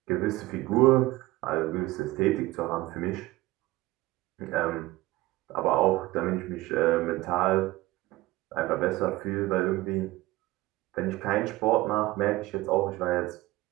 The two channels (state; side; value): quieter; left; 18.9 dB